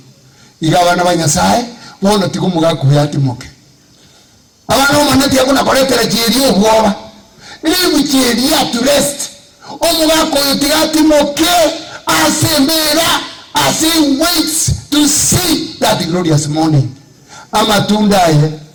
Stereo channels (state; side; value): identical; both; correlation 1.00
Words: igabana banyasaye bono tikumuga kuyati moke abana umanati yakuna koletera chiri obwoba ili buchiri ya to rest omuga koyotigati moke asembera as he waits to see that glorious morning. Amatunda ye